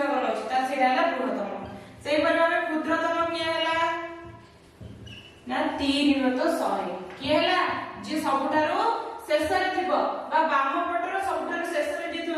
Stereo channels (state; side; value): identical; both; correlation 1.00